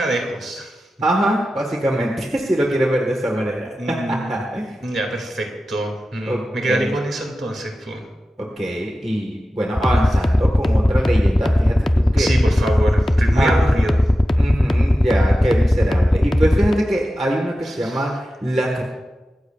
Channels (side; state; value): both; normal; correlation 0.93